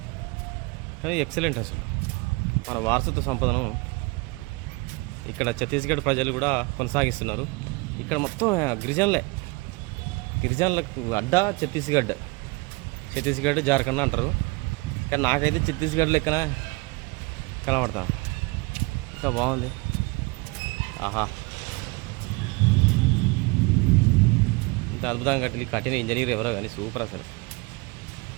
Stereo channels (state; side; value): quieter; left; 26.0 dB